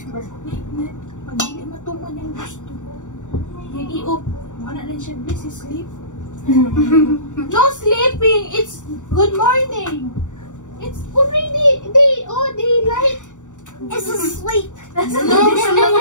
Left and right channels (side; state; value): right; late; 0.86 ms